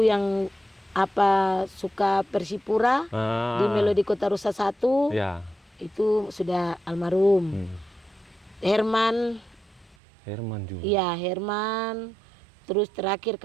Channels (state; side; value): drops out; left; at 10.0 s